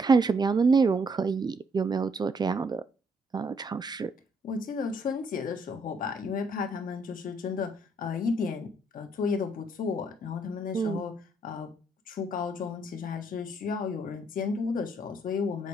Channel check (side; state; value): both; normal; correlation 0.69